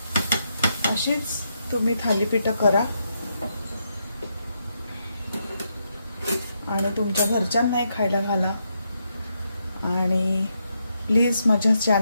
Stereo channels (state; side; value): inverted; both; correlation -0.81